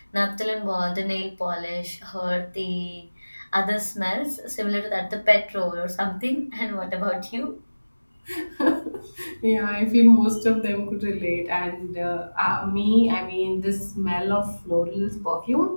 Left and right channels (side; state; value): both; inverted; correlation -1.00